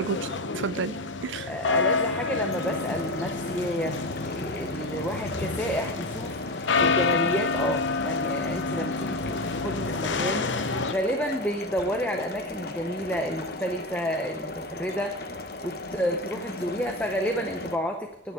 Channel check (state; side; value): normal; both; correlation 0.21